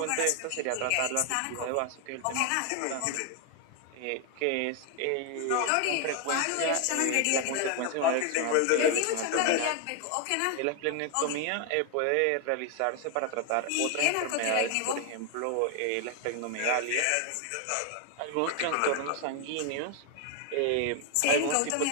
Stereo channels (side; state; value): both; different; correlation 0.00